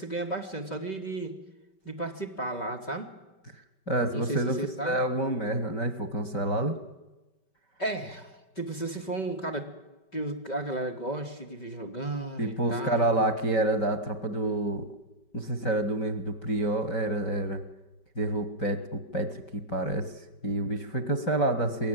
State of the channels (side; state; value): right; late; 5.2 ms